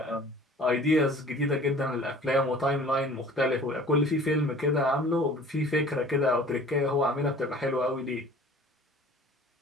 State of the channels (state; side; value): normal; both; correlation 0.47